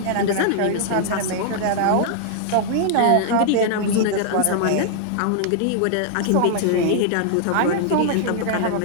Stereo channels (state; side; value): different; both; correlation -0.01